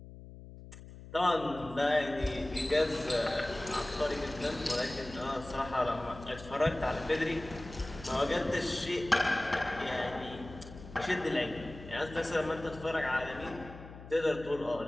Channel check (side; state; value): left; noise; hum, 15 dB below the sound